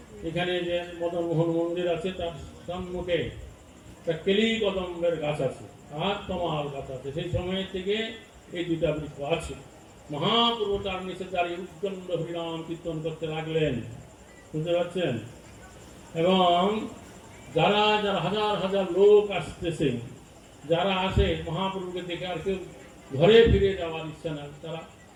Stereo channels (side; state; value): both; identical; correlation 1.00